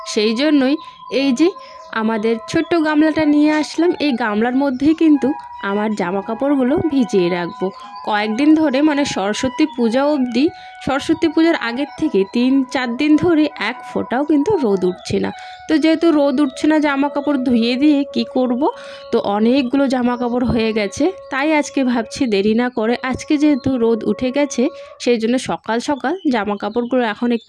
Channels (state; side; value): identical; both; correlation 1.00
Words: সেই জন্যই এই যে আমাদের ছোট্ট গামলাটা নিয়ে আসলাম। এই গামলার মধ্যেই কিন্তু আমার জামা কাপড়গুলো ভিজিয়ে রাখবো কয়েকদিন ধরে, মানে সরস্বতী পূজা অবধি। সরস্বতী পূজার আগের থেকে 3-4 দিন ধরে এক ফোঁটাও কিন্তু রোদ উঠছে না। তো যেহেতু রোদ উঠছে না, জামা কাপড় ধুয়ে দিয়ে কি করব, তো অনেকগুলো জামা কাপড় হয়ে গেছে। তাই আজকে ভাবছি দেরি না করে, আজকে যেহেতু রোদ উঠে গেছে সেই জন্য সকাল সকাল জামা কাপড়গুলো এখন